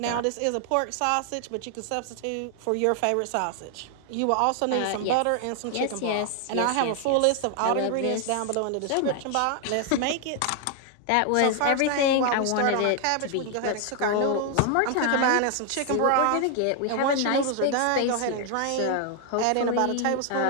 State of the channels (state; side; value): different; both; correlation 0.00